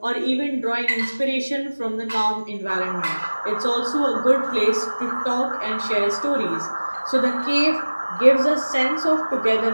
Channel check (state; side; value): inverted; both; correlation -1.00